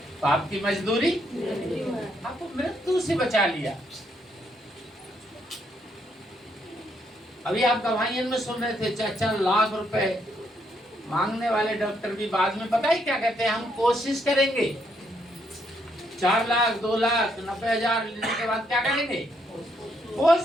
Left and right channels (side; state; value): both; normal; correlation 0.74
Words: पाप की मजदूरी आपको मृत्यु से बचा लिया। अभी आप गवाहियन में सुन रहे थे, 4 लाख रुपए मांगने वाले डॉक्टर भी बाद में पता ही क्या कहते हैं, हम कोशिश करेंगे। 4 लाख, 2 लाख, 90,000 लेने के बाद क्या करेंगे?